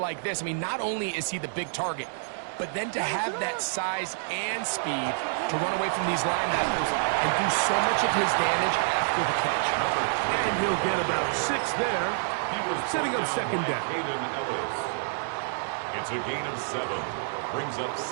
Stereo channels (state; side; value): silent; left; digital silence